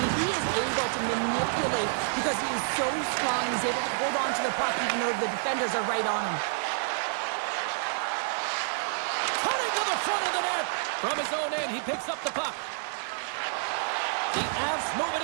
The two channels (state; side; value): silent; left; digital silence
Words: he is able to manipulate because he is so strong. He's able to hold on to the puck even though the defenders are right on him. Cutting to the front of the net. From his own end, he picks up the puck. The Avs move